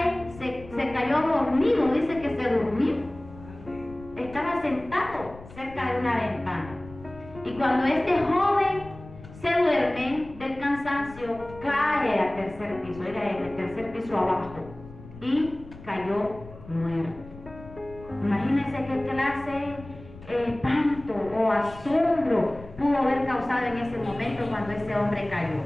se cayó dormido, dice que se durmió. Estaba sentado cerca de una ventana. Y cuando este joven se duerme del cansancio, cae al tercer piso, era el tercer piso abajo, y cayó muerto. Imagínense qué clase espanto o asombro pudo haber causado en ese momento cuando ese hombre cayó.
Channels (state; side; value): noise; left; rumble, 18 dB below the sound